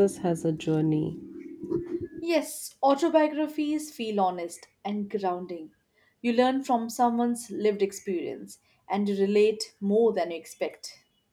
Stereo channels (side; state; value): both; identical; correlation 1.00